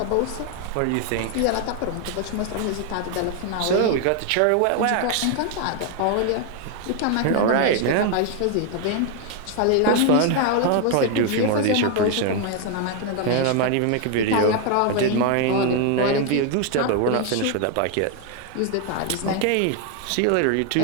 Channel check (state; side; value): different; both; correlation 0.01